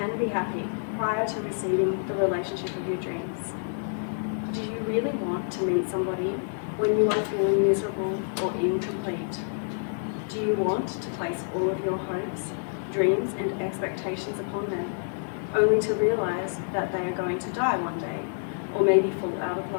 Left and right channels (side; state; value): right; silent; digital silence